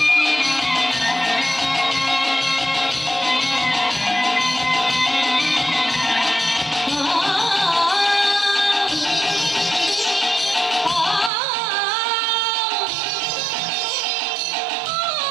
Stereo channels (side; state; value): left; drops out; at 11.3 s